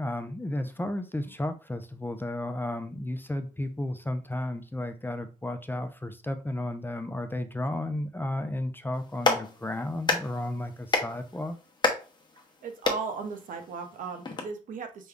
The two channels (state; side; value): normal; both; correlation 0.59